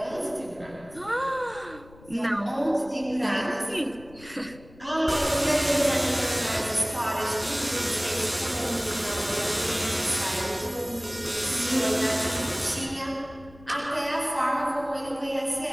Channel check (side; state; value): left; noise; rumble, 21 dB below the sound